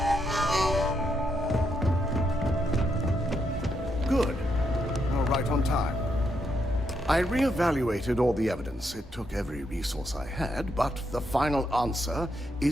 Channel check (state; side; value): normal; both; correlation 0.79